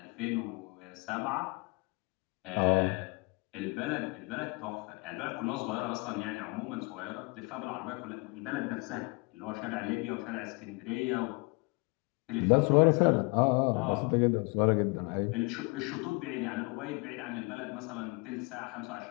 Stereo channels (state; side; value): quieter; right; 28.7 dB